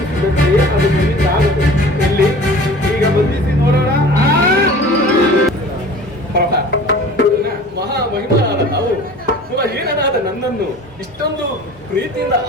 ಅದು ನಿನ್ನಿಂದಾಗದು. ಇಲ್ಲಿ ಈಗ ಬಂಧಿಸಿ ನೋಡೋಣ. ಮಹಾಮಹಿಮನಾದ ನಾವು ಕುಲಹೀನನಾದ ನನ್ನನ್ನು ಇಷ್ಟೊಂದು ಪ್ರೀತಿಯಿಂದ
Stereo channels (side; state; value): both; normal; correlation 0.43